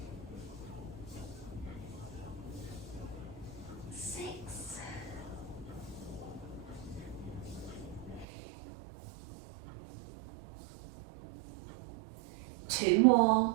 6, 2 more.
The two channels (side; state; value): left; drops out; at 8.2 s